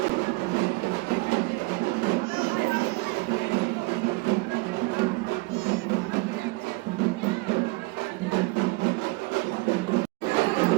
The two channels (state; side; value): quieter; left; 25.3 dB